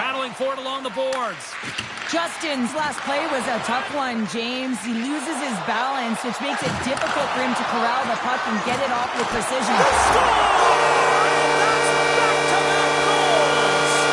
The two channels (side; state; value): both; identical; correlation 1.00